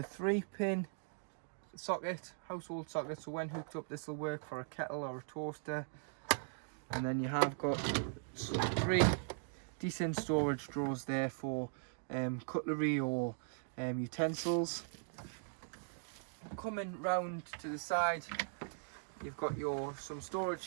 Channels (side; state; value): left; silent; digital silence